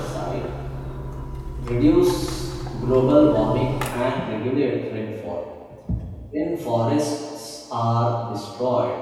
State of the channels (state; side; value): identical; both; correlation 1.00